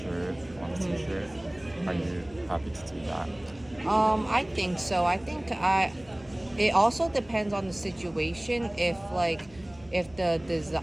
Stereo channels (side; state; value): left; noise; hum, 24 dB below the sound